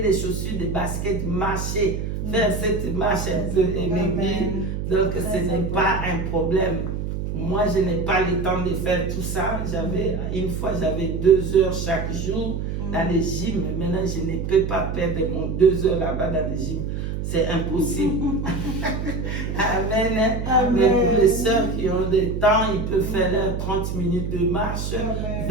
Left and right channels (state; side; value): noise; right; hum, 3 dB below the sound